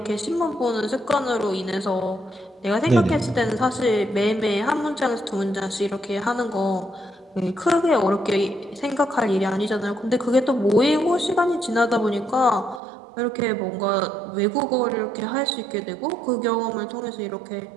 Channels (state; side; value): drops out; left; at 12.8 s